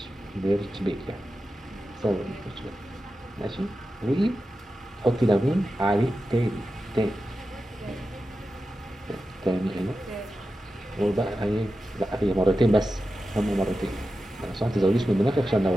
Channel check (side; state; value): both; normal; correlation 0.92